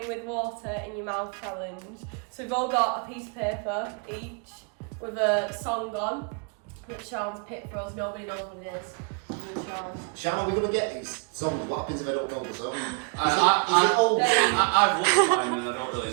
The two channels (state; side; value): quieter; left; 36.7 dB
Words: with water in your mouth challenge. So we've all got a piece of paper each with a song on that Sean's picked for us. Nobody knows what it is. Sean, are we going to get these songs? What happens if I don't know the song? I've looked at mine and I don't really